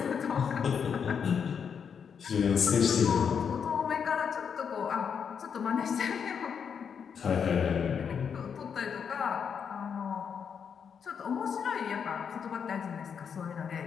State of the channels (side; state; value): right; quieter; 7.0 dB